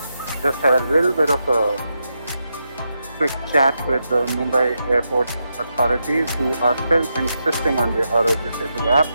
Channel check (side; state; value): both; inverted; correlation -0.85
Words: just had a little bit of a quick chat with the Mumbai airport authorities, who are still insisting on the Arogya Setu app.